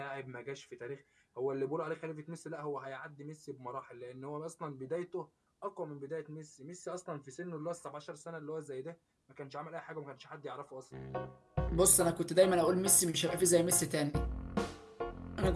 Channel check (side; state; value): both; identical; correlation 1.00